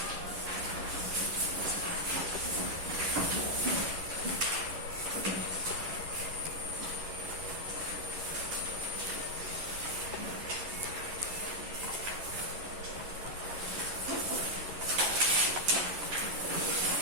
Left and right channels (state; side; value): late; left; 11 ms